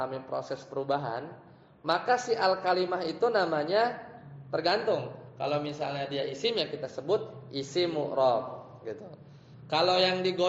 proses perubahan, maka si al-kalimah itu namanya tergantung. Kalau misalnya dia isim, ya kita sebut isim mu'rab, gitu. Kalau yang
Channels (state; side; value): identical; both; correlation 1.00